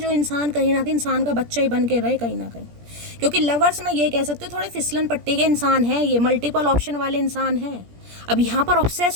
इंसान कहीं ना कहीं इंसान का बच्चा ही बन के रहे कहीं ना कहीं। क्योंकि लवर्स में ये कह सकते हो थोड़े फिसलन पट्टी के इंसान हैं, ये मल्टीपल ऑप्शन वाले इंसान हैं। अब यहाँ पर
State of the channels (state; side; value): late; left; 17 ms